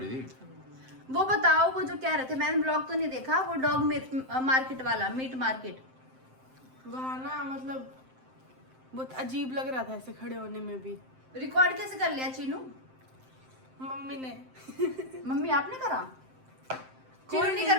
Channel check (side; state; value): left; late; 7.7 ms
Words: थी। वो बताओ, वो जो कह रहे थे, मैंने ब्लॉग तो नहीं देखा, वो डॉग मार्केट वाला, मीट मार्केट। वहाँ ना मतलब बहुत अजीब लग रहा था ऐसे खड़े होने में भी। रिकॉर्ड कैसे कर लिया चीनू? मम्मी ने मम्मी आपने करा? चीनू नहीं कर